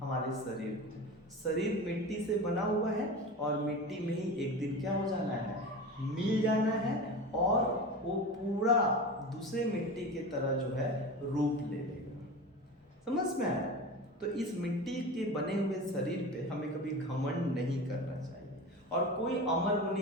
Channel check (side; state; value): both; normal; correlation 0.30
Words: शरीर को। शरीर मिट्टी से बना हुआ है और मिट्टी में ही एक दिन क्या हो जाना है, मिल जाना है, और वो पूरा दूसरे मिट्टी की तरह जो है रूप ले लेगा। समझ में आया? तो इस मिट्टी के बने हुए शरीर पे हमें कभी घमंड नहीं करना चाहिए, और कोई अमर